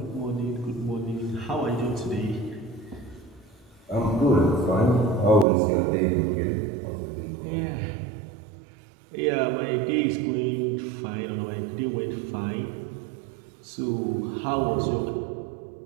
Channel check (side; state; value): left; drops out; at 5.5 s